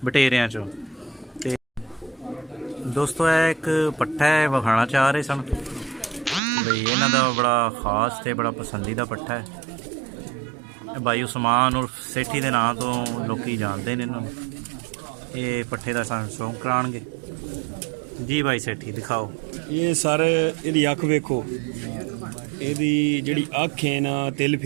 ਬਟੇਰਿਆਂ 'ਚੋਂ। ਤੇ ਦੋਸਤੋ ਇਹ ਇੱਕ ਪੱਠਾ ਹੈ, ਵਿਖਾਣਾ ਚਾਹ ਰਹੇ ਸਨ ਬਈ ਇਹਨਾਂ ਦਾ ਬੜਾ ਖਾਸ ਤੇ ਬੜਾ ਪਸੰਦੀਦਾ ਪੱਠਾ ਹੈ। भाई उस्मान और सेठी के नाम तो लोग जानते हैं इन्होंने। ये पट्ठे का सन शौक कराएंगे जी। भाई सेठी दिखाओ। ये सारे ਇਹਦੀ ਅੱਖ ਵੇਖੋ, ਇਹਦੀ ਜਿਹੜੀ ਅੱਖ ਹੈ ਨਾ ਤਿਲ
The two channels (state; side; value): drops out; left; at 6.4 s